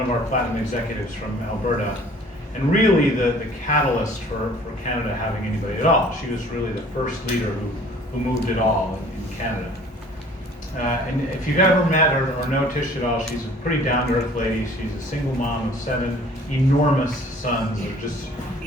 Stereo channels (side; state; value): both; normal; correlation 0.52